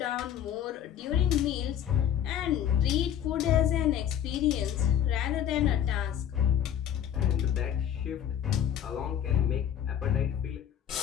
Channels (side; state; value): right; quieter; 9.8 dB